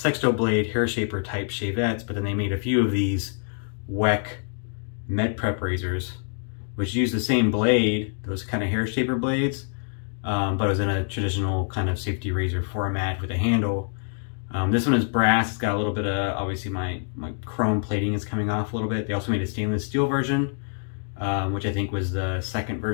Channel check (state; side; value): silent; right; 61 dB below the other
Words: blade hair shaper type shavettes, but then they made a few of these Weck Med Prep razors, which use the same blade, those kind of hair shaper blades, but it was in a traditional kind of safety razor format with a handle. This one is brass. It's got a little bit of, obviously my chrome plating is coming off a little bit. They also made a stainless steel version, which I think was the second